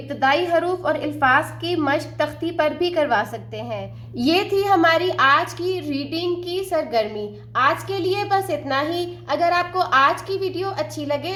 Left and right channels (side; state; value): both; identical; correlation 1.00